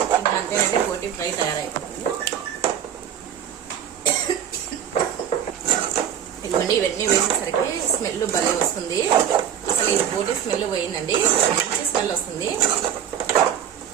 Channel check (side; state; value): left; quieter; 9.2 dB